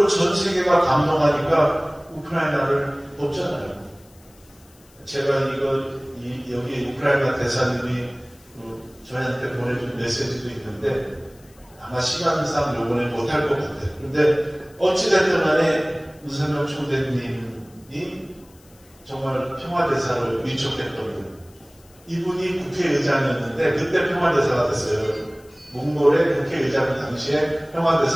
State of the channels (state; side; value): noise; left; hiss, 28 dB below the sound